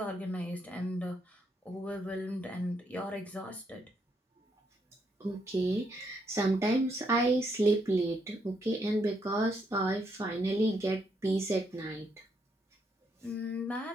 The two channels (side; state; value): both; normal; correlation 0.76